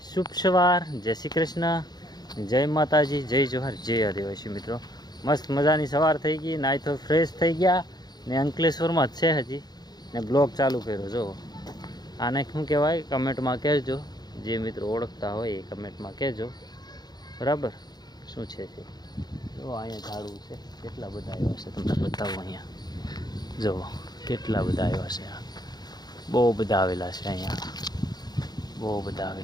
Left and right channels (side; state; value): right; late; 0.20 ms